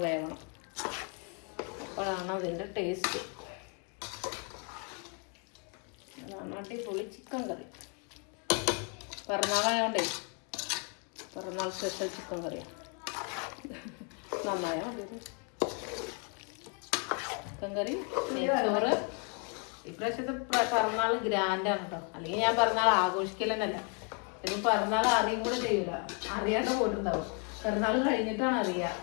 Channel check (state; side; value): quieter; right; 38.0 dB